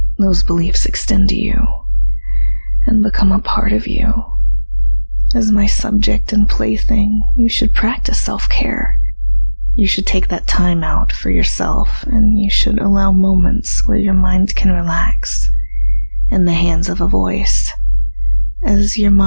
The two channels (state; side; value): inverted; both; correlation -1.00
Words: those beliefs extend to you and become a part of you. As my subject and plaything, you should practice self-care. You should take that time out for yourself, and you should allow moments where your mind can relax in the hands of a voice, as your